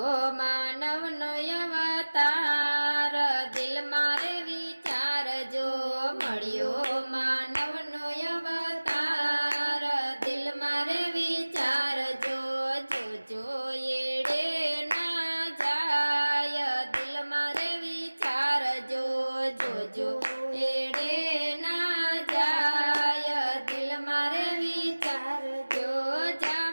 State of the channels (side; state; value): both; inverted; correlation -1.00